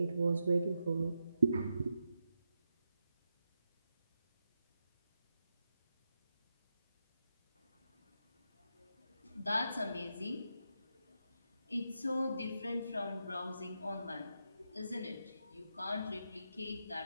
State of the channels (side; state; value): both; inverted; correlation -0.86